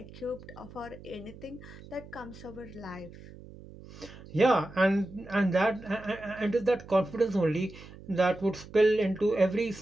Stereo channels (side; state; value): right; noise; hum, 17 dB below the sound